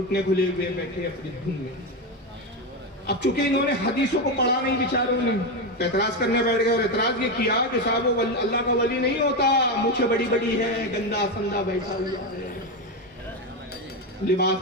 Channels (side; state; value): both; normal; correlation 0.12